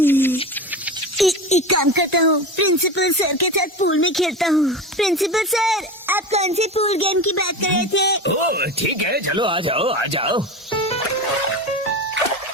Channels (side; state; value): both; normal; correlation 0.26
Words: एक काम करता हूँ, प्रिंसिपल सर के साथ पूल में खेलता हूँ। प्रिंसिपल सर, आप कौन से पूल गेम की बात कर रहे थे? ओह ठीक है, चलो आ जाओ आ जाओ।